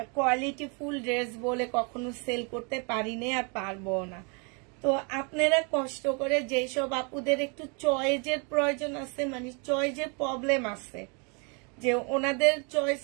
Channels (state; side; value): quieter; left; 34.3 dB